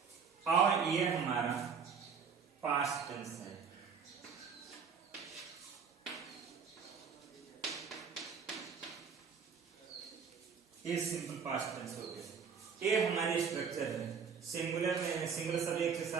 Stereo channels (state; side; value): quieter; left; 6.2 dB